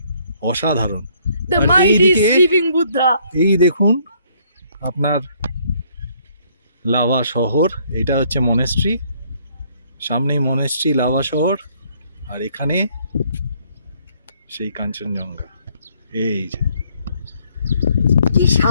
অসাধারণ। দ্য আর মাইটি এইদিকে- স্লিপিং বুদ্ধা। এই দেখুন আপনার লাভা শহর, এটা হচ্ছে মনেস্ট্রি, সামনেই মনেস্ট্রি, লাভা শহর, আর এখানে সেই কাঞ্চনজঙ্ঘা। এই যে কি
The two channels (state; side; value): inverted; both; correlation -0.65